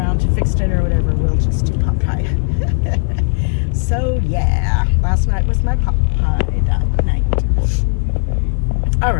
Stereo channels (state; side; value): silent; right; digital silence